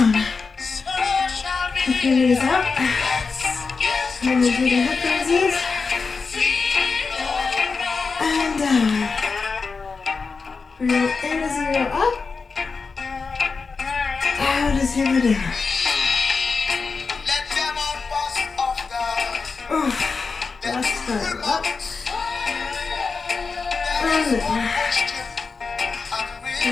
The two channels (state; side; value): quieter; right; 4.7 dB